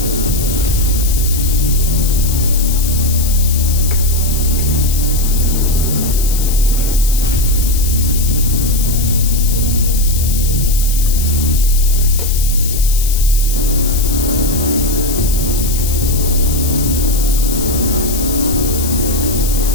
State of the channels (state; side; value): noise; left; hiss, 6 dB below the sound